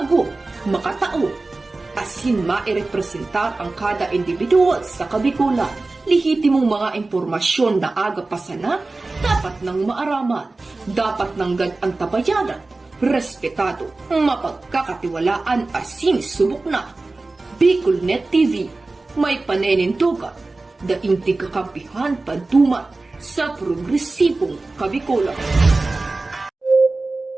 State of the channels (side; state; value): left; quieter; 3.3 dB